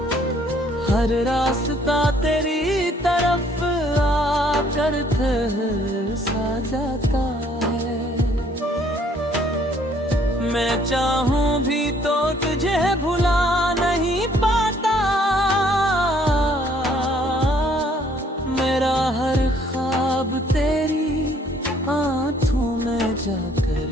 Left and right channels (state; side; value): normal; both; correlation 0.63